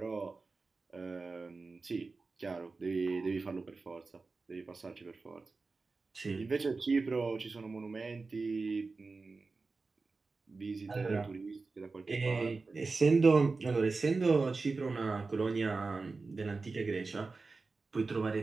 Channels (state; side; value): quieter; left; 4.0 dB